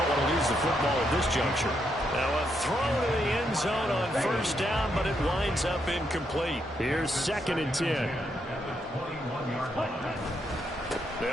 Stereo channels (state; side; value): normal; both; correlation 0.79